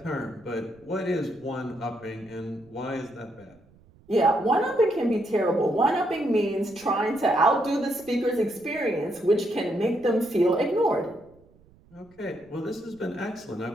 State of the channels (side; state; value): right; noise; rumble, 28 dB below the sound